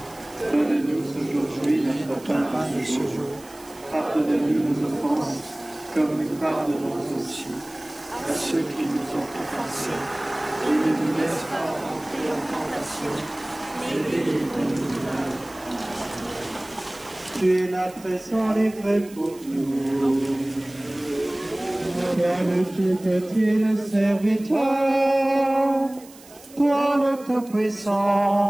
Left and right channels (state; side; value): noise; right; hiss, 22 dB below the sound